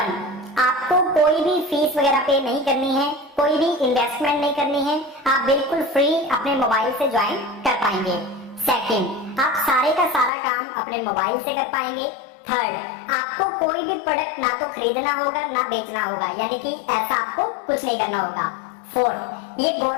आपको कोई भी फीस वगैरह पे नहीं करनी है, कोई भी इन्वेस्टमेंट नहीं करनी है, आप बिल्कुल फ्री अपने मोबाइल से ज्वाइन कर पाएंगे। सेकंड, आप सारे का सारा काम अपने मोबाइल से कर पाएंगे। थर्ड, आपको कोई भी प्रोडक्ट ना तो खरीदना होगा ना बेचना होगा, यानी कि ऐसा आपको कुछ नहीं करना होगा। फोर्थ, ये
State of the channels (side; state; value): right; drops out; at 10.3 s